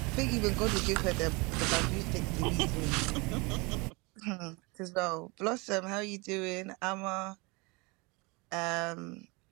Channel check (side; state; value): left; quieter; 27.3 dB